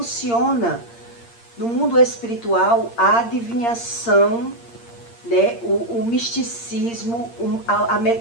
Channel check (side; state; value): right; late; 8.7 ms